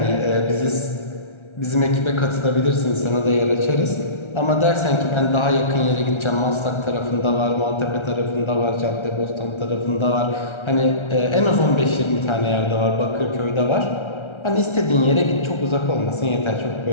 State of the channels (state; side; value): late; right; 1.3 ms